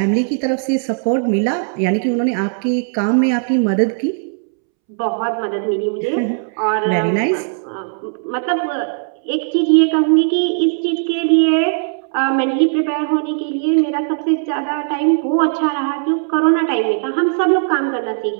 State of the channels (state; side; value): silent; left; 68 dB below the other